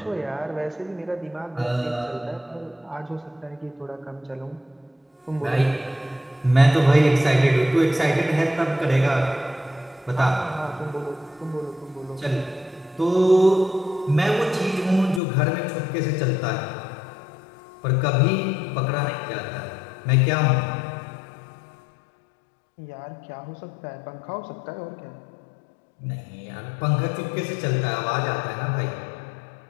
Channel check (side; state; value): right; drops out; at 15.2 s